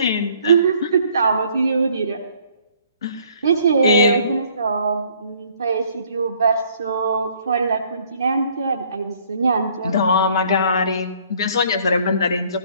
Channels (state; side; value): inverted; both; correlation -0.61